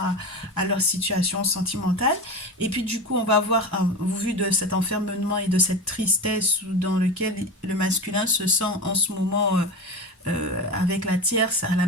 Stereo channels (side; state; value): both; normal; correlation 0.26